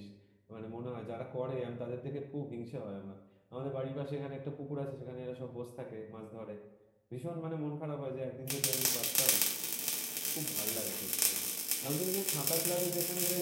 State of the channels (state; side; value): identical; both; correlation 1.00